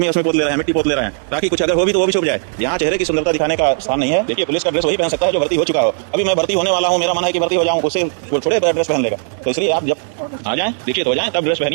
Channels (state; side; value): silent; left; digital silence